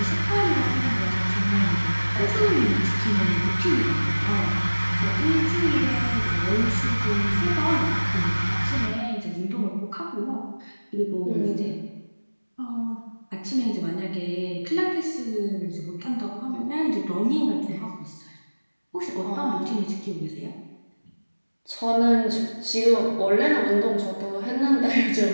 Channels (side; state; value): both; inverted; correlation -1.00